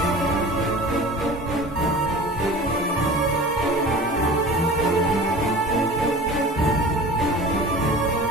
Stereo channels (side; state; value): both; normal; correlation 0.38